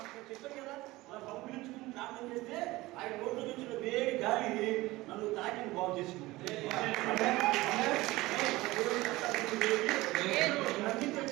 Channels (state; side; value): quieter; left; 19.4 dB